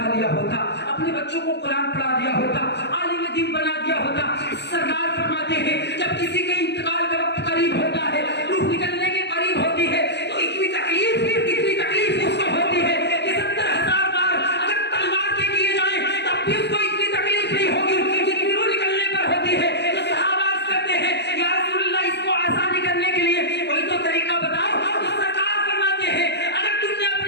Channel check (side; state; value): right; late; 0.50 ms